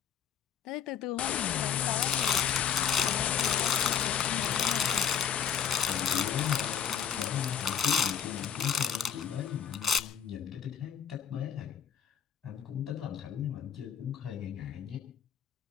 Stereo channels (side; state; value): right; quieter; 8.0 dB